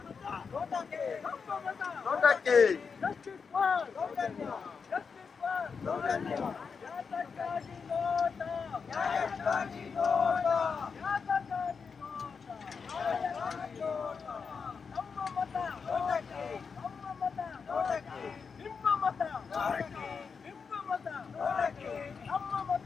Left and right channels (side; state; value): right; quieter; 5.6 dB